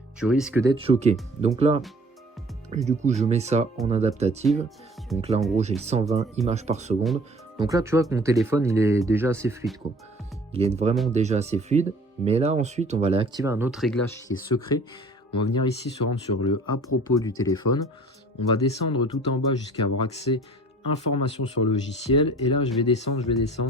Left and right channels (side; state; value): both; normal; correlation 0.50